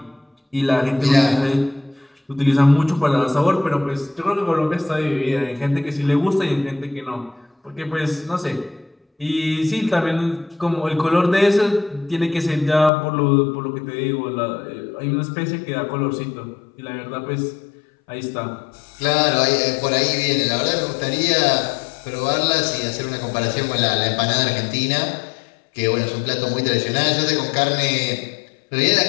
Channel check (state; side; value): drops out; right; at 12.9 s